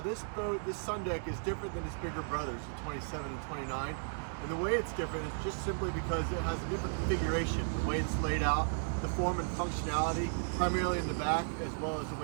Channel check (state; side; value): silent; left; 55 dB below the other